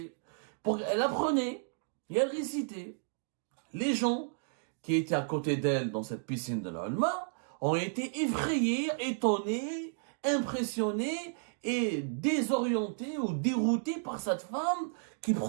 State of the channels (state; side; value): silent; left; digital silence